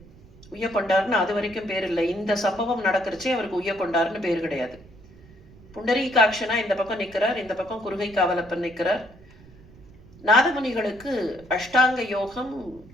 உய்யக்கொண்டார்னு அது வரைக்கும் பேர் இல்லை. இந்த சம்பவம் நடக்கிறச்சே அவருக்கு உய்யக்கொண்டார்னு பேர் கிடையாது. புண்டரீகாட்சனா இந்த பக்கம் நிற்கிறார், இந்த பக்கம் குருகை காவலப்பன் நிற்கிறார். நாதமுனிகளுக்கு அஷ்டாங்க யோகம்,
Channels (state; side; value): noise; right; rumble, 23 dB below the sound